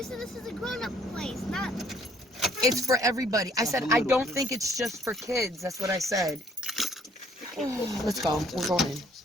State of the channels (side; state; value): both; normal; correlation 0.62